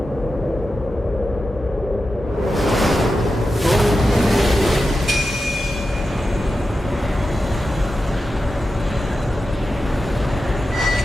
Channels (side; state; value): both; normal; correlation 0.91